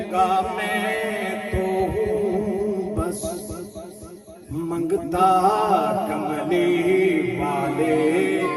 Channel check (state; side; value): identical; both; correlation 1.00